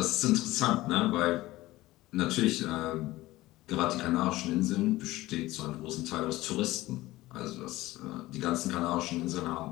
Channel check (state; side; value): quieter; right; 17.9 dB